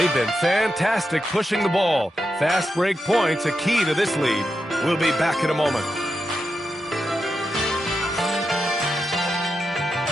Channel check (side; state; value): both; normal; correlation 0.87